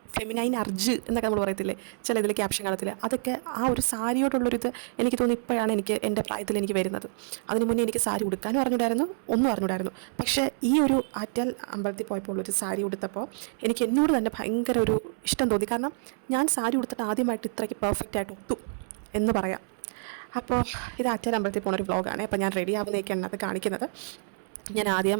ഫെമിനൈൻ അർജ് എന്നൊക്കെ നമ്മൾ പറയത്തില്ലേ ചില ഇതിൽ ക്യാപ്ഷൻ കാണത്തില്ല, അതൊക്കെ ആ ഒരു സാരിയോടുള്ളൊരിത് എനിക്ക് തോന്നുന്നു ഇപ്പോഴാണ് എൻ്റെ പ്രായത്തിൽ എനിക്ക് വരുന്നത്. അതിന് മുന്നേ എനിക്ക് സാരി ഉടുക്കാനും അറിഞ്ഞൂടായിരുന്നു. പക്ഷേ ഈ ഒരു ആറ്റാൽ അമ്പലത്തിൽ പോയപ്പോൾ ഒരു സാരി ഉടുത്തപ്പോൾ എനിക്ക് എന്നോട് തന്നെ ഭയങ്കര ഒരു ഇഷ്ടം തോന്നി. കാരണം ഞാൻ സാരി ഉടുത്തിട്ട് ആദ്യമായിട്ട് ഇത്രയ്ക്ക് പെർഫെക്റ്റായിട്ട് ഒത്തു എന്ന് പറയാം. അപ്പോൾ ഇത് ആറ്റാൽ അമ്പലത്തിൽ പോകുന്നൊരു വ്ളോഗാണ്. അപ്പോൾ ഞാൻ റെഡി ആവുന്നതൊക്കെയാണ് അത് കാണിക്കുന്നത്. ഞാൻ ആദ്യം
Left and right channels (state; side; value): silent; left; 59 dB below the other